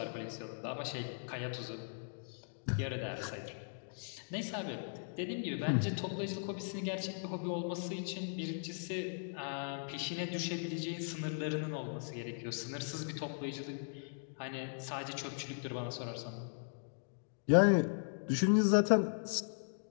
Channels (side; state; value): right; silent; digital silence